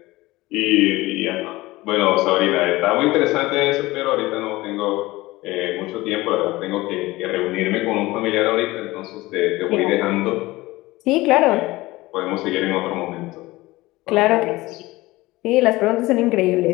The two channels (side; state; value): right; quieter; 19.6 dB